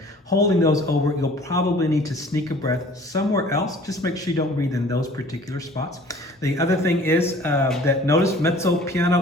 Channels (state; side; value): normal; both; correlation 0.50